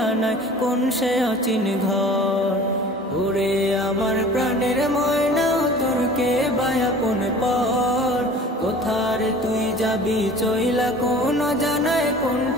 কোন সে অচিন ঘর। ওরে আমার প্রাণের ময়না তোর কে বায়াপন পর কোথারে তুই যাবি চইলা কোন জানায় কোন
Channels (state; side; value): normal; both; correlation 0.44